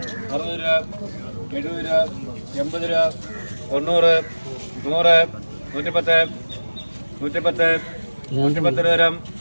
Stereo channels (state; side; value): inverted; both; correlation -1.00